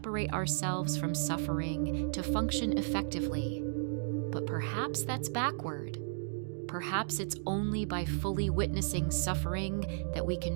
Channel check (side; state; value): left; silent; digital silence